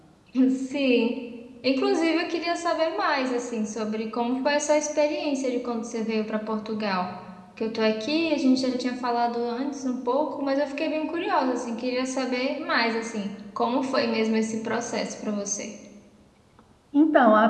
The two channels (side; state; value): both; identical; correlation 1.00